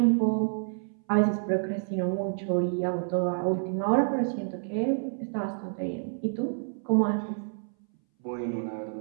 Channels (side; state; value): left; silent; 59 dB below the other